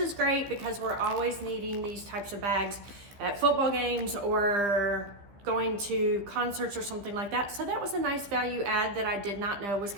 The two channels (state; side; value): late; left; 15 ms